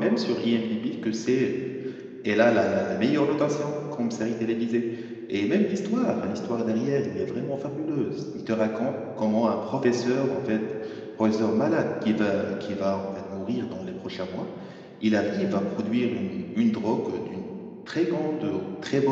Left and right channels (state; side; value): identical; both; correlation 1.00